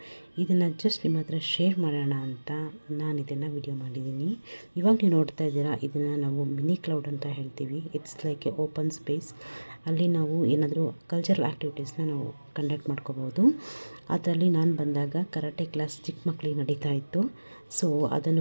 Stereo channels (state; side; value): inverted; both; correlation -1.00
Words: ಇದನ್ನು ಜಸ್ಟ್ ನಿಮ್ಮ ಹತ್ರ ಶೇರ್ ಮಾಡೋಣ ಅಂತ ನಾನು ಇದನ್ನು ವಿಡಿಯೋ ಮಾಡಿದ್ದೀನಿ. ಇವಾಗ ನೀವು ನೋಡ್ತಾ ಇದ್ದೀರಾ, ಇದನ್ನು ನಾವು ಮಿನಿ ಕ್ಲೌಡ್ ಅಂತ ಹೇಳ್ತೀವಿ. It's like A open space. ಅಲ್ಲಿ ನಾವು ಏನಾದರೂ ಕಲ್ಚರಲ್ ಆ್ಯಕ್ಟಿವಿಟೀಸ್ನ ನಾವು ಕಂಡಕ್ಟ್ ಮಾಡ್ಕೋಬೋದು. ಅದರಲ್ಲಿ ನಾನು ಬಂದಾಗ ಕರಾಟೆ ಕ್ಲಾಸ್ ಚಿಕ್ಕ ಮಕ್ಕಳಿಗೆ ನಡೀತಾ ಇತ್ತು. ಸೊ